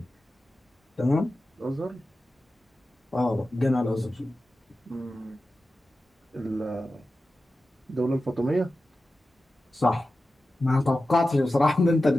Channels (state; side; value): normal; both; correlation 0.93